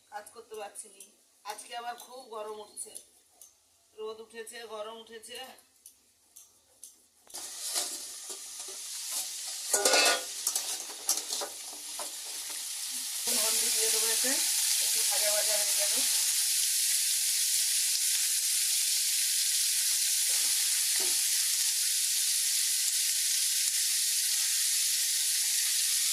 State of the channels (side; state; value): both; identical; correlation 1.00